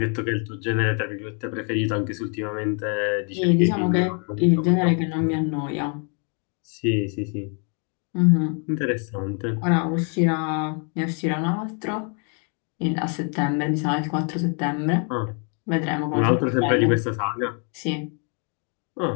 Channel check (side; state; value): right; quieter; 39.6 dB